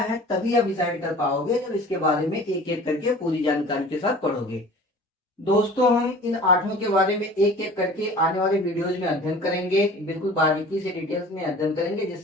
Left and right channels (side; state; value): both; normal; correlation 0.44